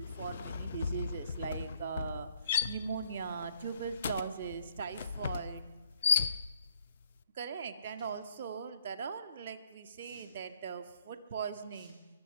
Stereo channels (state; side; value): inverted; both; correlation -0.67